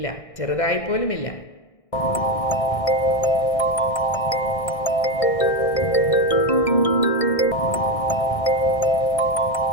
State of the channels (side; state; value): right; late; 1.6 ms